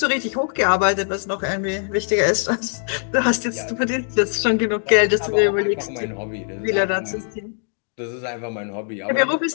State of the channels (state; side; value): silent; right; digital silence